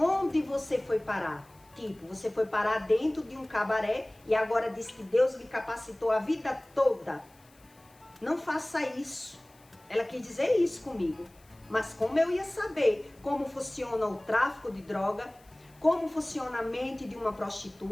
você foi parar? Tipo, você foi parar dentro de um cabaré e agora diz que Deus lhe capacitou a vida toda. Não faça isso. Ela quis dizer isso comigo. Mas como eu ia saber como funciona o tráfico de droga, como funciona a mente de uma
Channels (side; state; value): left; noise; hiss, 29 dB below the sound